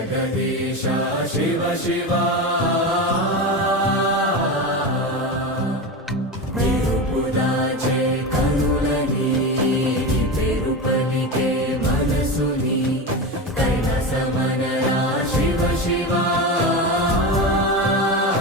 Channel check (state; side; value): normal; both; correlation 0.21